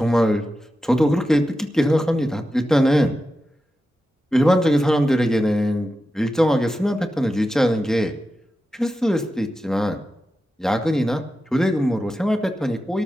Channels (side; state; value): both; normal; correlation 0.91